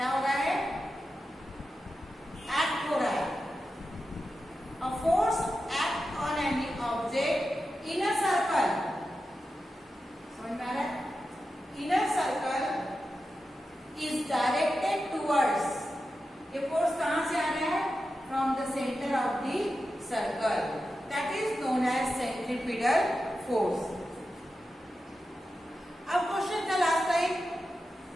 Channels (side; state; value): both; normal; correlation 0.91